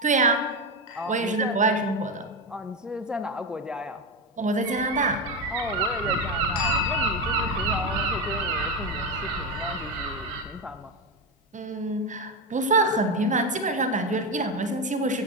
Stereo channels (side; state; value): both; normal; correlation 0.13